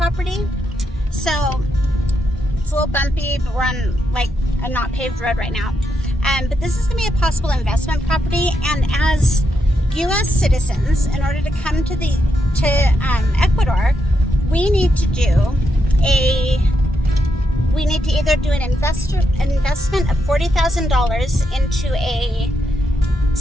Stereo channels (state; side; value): normal; both; correlation 0.82